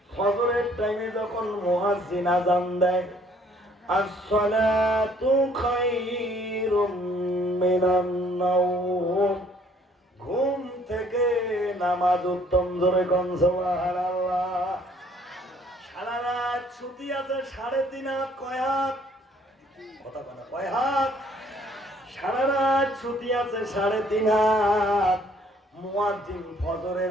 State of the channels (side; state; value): both; normal; correlation 0.61